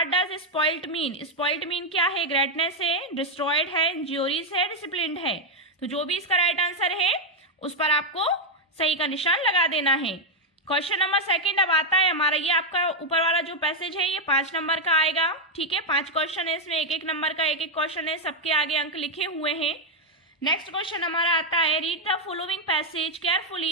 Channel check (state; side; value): normal; both; correlation 0.02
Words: does spoiled mean. Spoiled mean क्या है, ग्रेटनेस है, डिस्ट्रॉयड है, इंज्यूरीज है, डिसिप्लिन्ड है। तो जो भी इसका राइट आंसर है उस पर आपको सही का निशान लगा देना है। क्वेश्चन नंबर सेकंड अब आता है हमारा, ये आपका ऊपर वाला जो पैसेज है ये 5 नंबर का आएगा, ठीक है। 5 क्वेश्चन है इसमें, एक एक नंबर का एक एक क्वेश्चन है, सबके आगे अंक लिखे हुए हैं। नेक्स्ट क्वेश्चन हमारा आता है, read the following passage